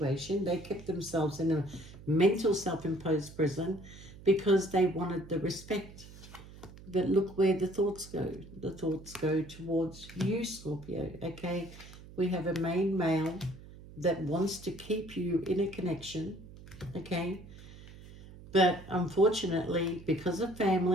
They kept themselves in a mental self-imposed prison because they wanted the respect. But look where the thoughts go. The thoughts go towards you, Scorpio, okay? We have a main male that wants to keep you in a connection, okay? But unfortunately, because of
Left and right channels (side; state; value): right; noise; hum, 17 dB below the sound